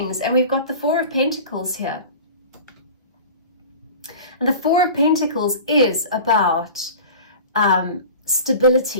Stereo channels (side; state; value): both; inverted; correlation -0.38